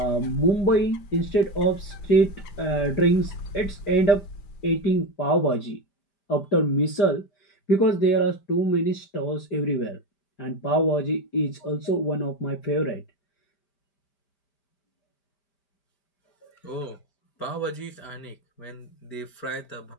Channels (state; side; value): late; right; 5.1 ms